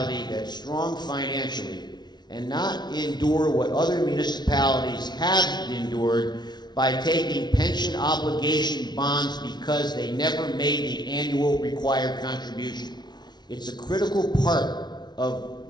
that's strong financially and not endure what other municipalities have endured by taking pension obligation bonds because they never made the annual required contribution. It's a critical part of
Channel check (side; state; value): right; late; 0.20 ms